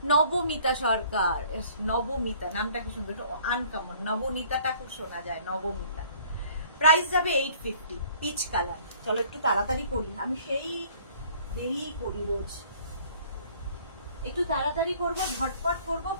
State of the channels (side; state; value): both; inverted; correlation -0.55